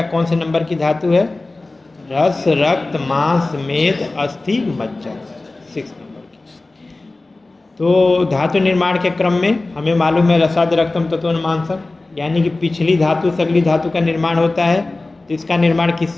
कौन से नंबर की धातु है? रस, रक्त, मांस, मेद, अस्थि, मज्जा, 6 नंबर की। तो धातु निर्माण के क्रम में हमें मालूम है रसाद रक्तम तत्व मांसम, यानी कि पिछली धातु से अगली धातु का निर्माण होता है। तो इसका निर्माण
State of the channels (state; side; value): quieter; right; 3.1 dB